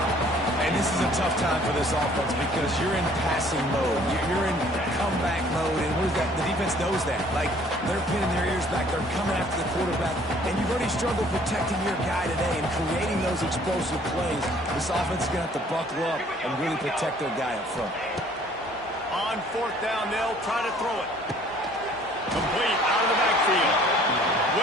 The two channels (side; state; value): both; normal; correlation 0.57